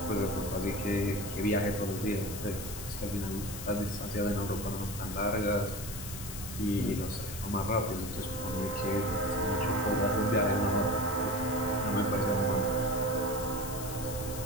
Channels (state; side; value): noise; left; hiss, 9 dB below the sound